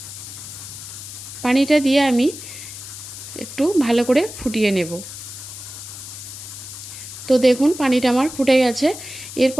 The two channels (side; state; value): left; noise; hiss, 12 dB below the sound